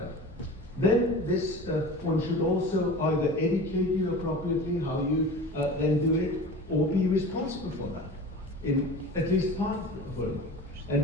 then this one should also either educate you appropriately how you then do it, or be responsible for that, in at least part of it.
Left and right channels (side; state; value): both; normal; correlation 0.35